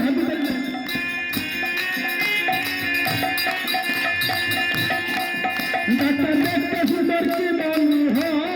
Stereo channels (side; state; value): both; identical; correlation 1.00